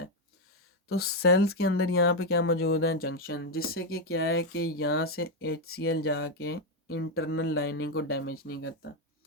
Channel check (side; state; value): both; normal; correlation 0.05